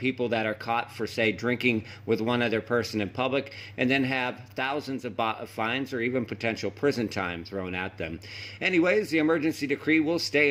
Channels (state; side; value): identical; both; correlation 1.00